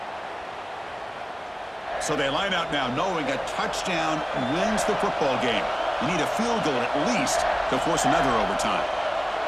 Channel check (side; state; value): both; identical; correlation 1.00